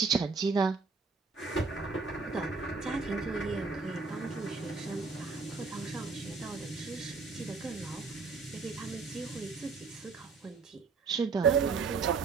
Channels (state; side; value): quieter; left; 4.7 dB